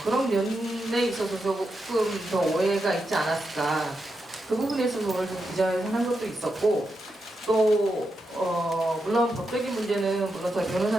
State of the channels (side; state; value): both; normal; correlation 0.86